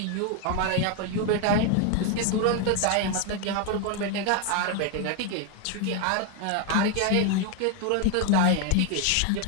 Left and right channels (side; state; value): both; different; correlation 0.01